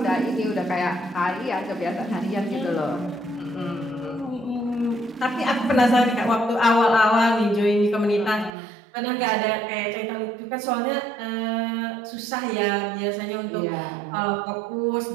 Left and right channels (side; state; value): left; drops out; at 8.5 s